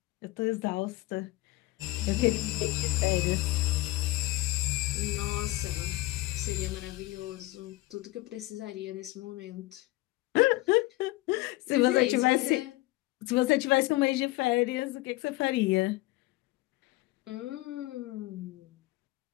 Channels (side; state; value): right; quieter; 19.3 dB